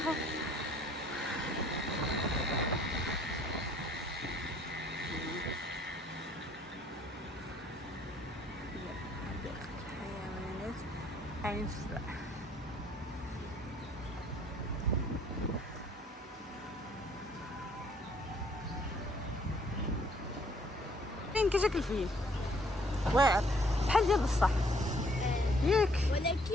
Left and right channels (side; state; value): both; normal; correlation 0.62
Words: عين السبع. فين كيجيك الفيل واعر بحال ديال بصح ياك.